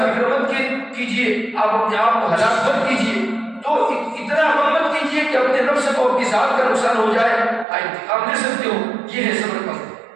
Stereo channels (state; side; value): drops out; left; at 7.7 s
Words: مت کیجیے، آپ اپنے آپ کو ہلاک مت کیجیے، تو اتنا غم مت کیجیے کہ اپنے نفس کو اپنی ذات کا نقصان ہو جائے، انتقام لے سکتے ہو، یہ ہے صبر کا مطلب۔